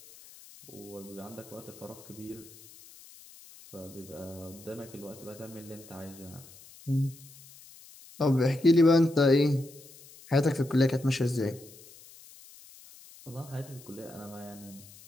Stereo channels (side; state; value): left; noise; hiss, 21 dB below the sound